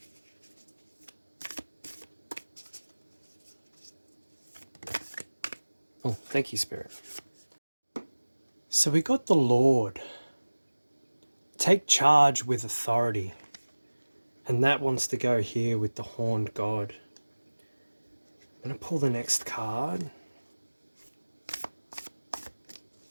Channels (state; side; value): inverted; both; correlation -1.00